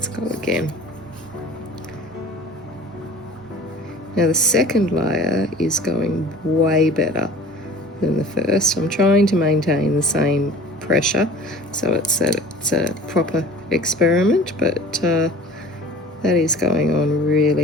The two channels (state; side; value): normal; both; correlation 0.44